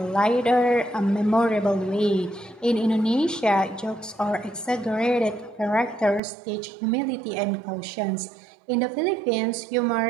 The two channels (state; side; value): drops out; left; at 6.2 s